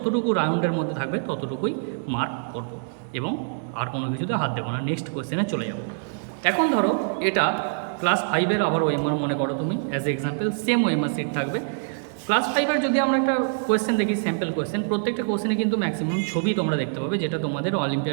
রাউন্ডের মধ্যে থাকবে ততটুকুই মার্ক করব এবং আর কোনো কিছুতে হাত দেবো না। নেক্সট কোয়েশ্চেনে চলে যাব। এখন ধরো এটা ক্লাস 5-এর আবার ওএমআর মনে করো তুমি, as example same OMR sheet থাকবে। ক্লাস 5-এর যদি আমরা একটা কোয়েশ্চেন দেখি, স্যাম্পল কোয়েশ্চেন, প্রত্যেকটা কোয়েশ্চেনে কিন্তু ম্যাক্সিমাম ছবি তোমরা দেখতে পাবে, যেটা তোমাদের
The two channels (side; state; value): left; silent; digital silence